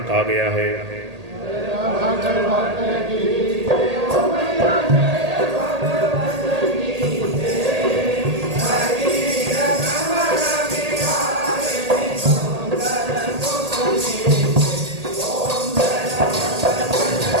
कहा गया है।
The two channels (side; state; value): left; late; 1.8 ms